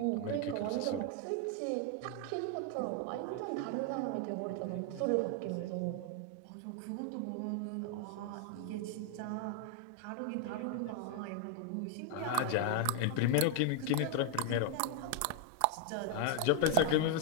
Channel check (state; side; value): different; both; correlation 0.00